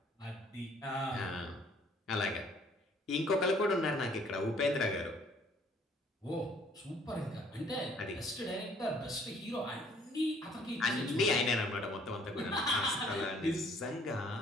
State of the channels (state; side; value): normal; both; correlation 0.60